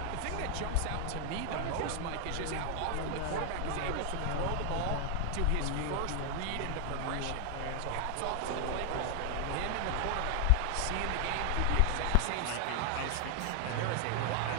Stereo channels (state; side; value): different; both; correlation 0.00